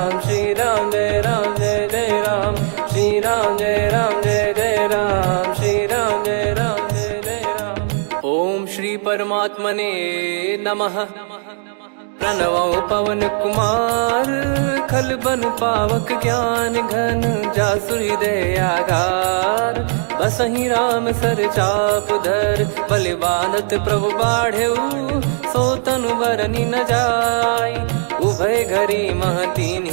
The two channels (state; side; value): silent; left; 58 dB below the other